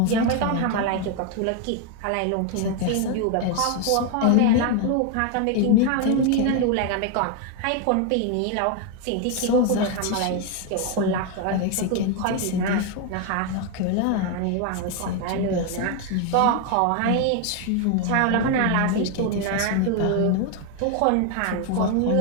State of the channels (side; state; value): both; different; correlation 0.01